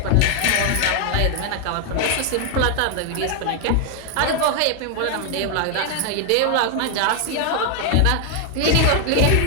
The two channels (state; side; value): different; both; correlation 0.00